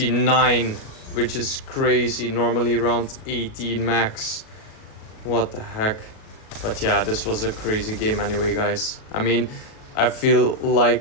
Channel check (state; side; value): late; right; 37 ms